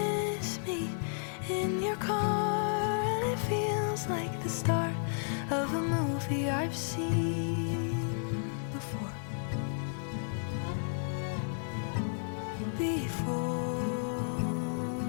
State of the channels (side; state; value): right; silent; 56 dB below the other